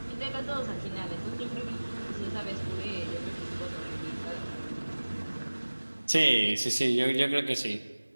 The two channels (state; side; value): inverted; both; correlation -1.00